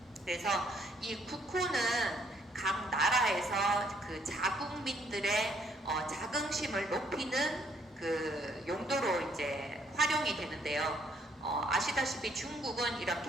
그래서 이 국호는 각 나라에서 그 자국민들의 자긍심을 높이는 그 용도로 이제 활용이 되는데요. 아시다시피 중국은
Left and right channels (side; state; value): both; normal; correlation 0.67